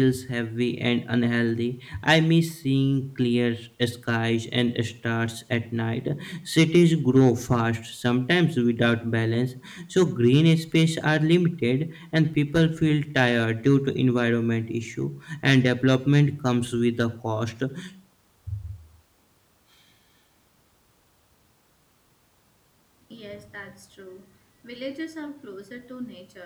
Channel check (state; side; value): identical; both; correlation 1.00